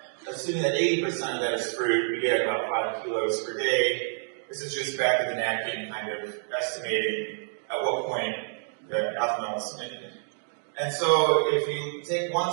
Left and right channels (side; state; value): left; silent; digital silence